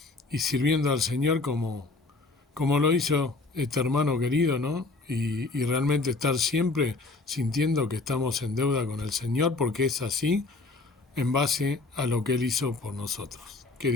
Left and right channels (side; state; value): right; quieter; 3.5 dB